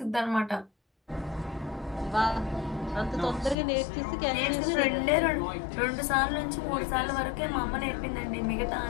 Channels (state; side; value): drops out; right; at 3.6 s